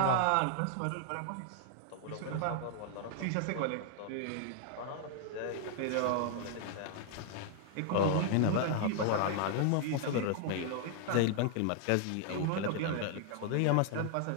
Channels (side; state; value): both; different; correlation 0.00